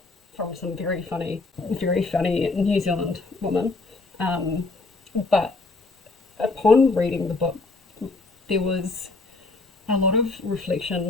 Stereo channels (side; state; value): right; quieter; 3.5 dB